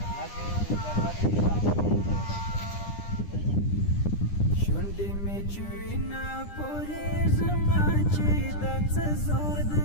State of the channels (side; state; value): right; late; 9.9 ms